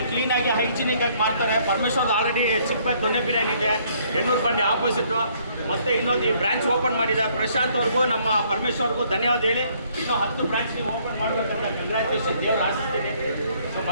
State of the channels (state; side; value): inverted; both; correlation -0.65